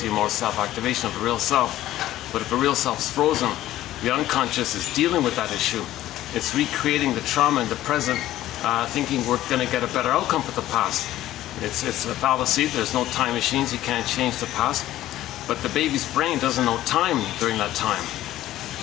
more self-activation of the real self. But if the real self's frozen, the unconscious is dealing with that issue. It's recreating the trauma in the present, thinking we're going to get a better outcome for the past. It's a fallacy. There's no time machines. You can't change the past. But the baby's brain doesn't know time during that time.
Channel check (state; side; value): quieter; right; 14.2 dB